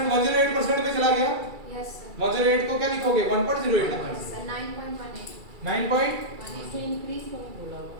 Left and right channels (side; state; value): left; late; 2.3 ms